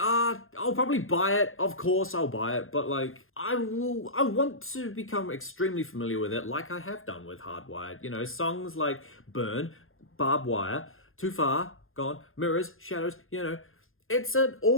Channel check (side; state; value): right; late; 0.60 ms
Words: probably buy it. Of course I'll buy it, but like I want to become extremely familiar with it like I have done with Hardwired. You know, songs like Burn, Barbed Wire, Too Far, Gone, Mirrors, Shadows, you know, it's an